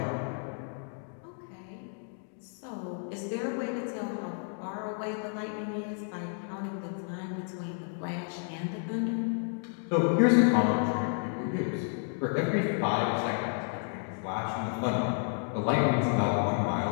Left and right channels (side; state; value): right; silent; 57 dB below the other